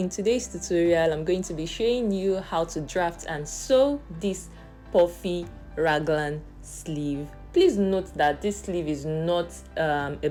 today's tutorial I'm going to be showing you how to draft and sew this puffy raglan sleeve. Please note that this sleeve is not a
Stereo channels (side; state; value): both; identical; correlation 1.00